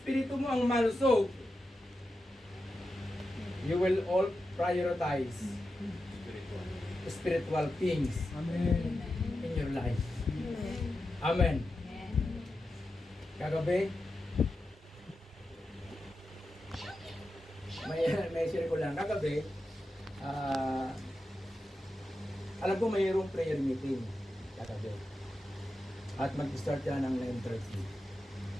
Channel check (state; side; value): normal; both; correlation 0.90